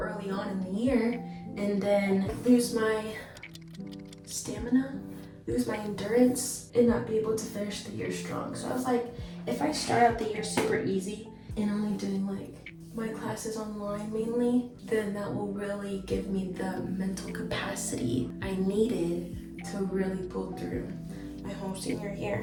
on in the year and then lose my stamina, lose my endurance, and not be able to finish the year strong. So I was like, if I start out the year super easy and only doing like my classes online mainly, then that will really give me the mental capacity I needed to really pull through my whole senior year.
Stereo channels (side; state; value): both; identical; correlation 1.00